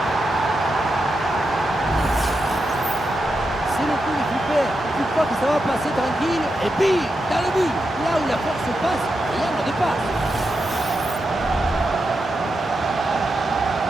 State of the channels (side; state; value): both; normal; correlation 0.87